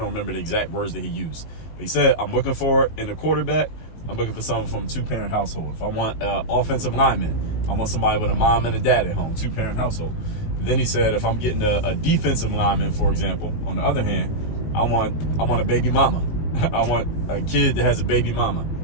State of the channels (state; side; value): late; right; 19 ms